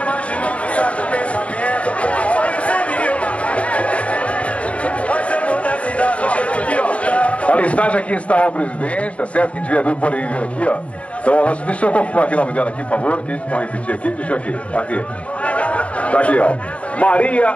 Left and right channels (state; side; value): late; right; 0.064 ms